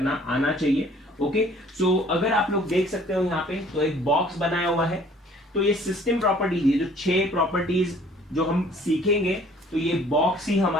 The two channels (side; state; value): both; normal; correlation 0.55